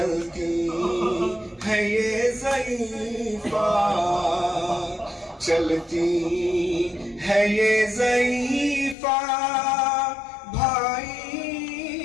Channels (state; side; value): drops out; right; at 9.0 s